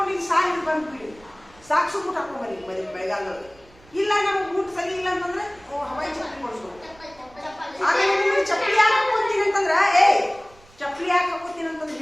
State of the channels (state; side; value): noise; right; rumble, 26 dB below the sound